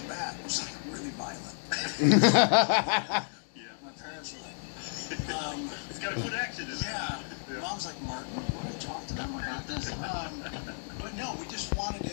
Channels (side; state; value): right; silent; digital silence